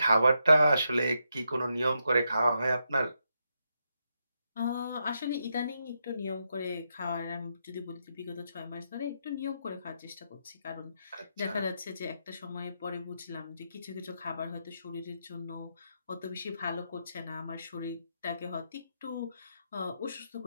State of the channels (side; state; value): both; inverted; correlation -0.82